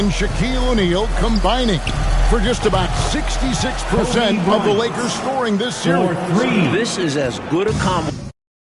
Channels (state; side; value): identical; both; correlation 1.00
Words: Shaquille O'Neal combining for just about 66% of the Lakers scoring this series. This is as good a combo.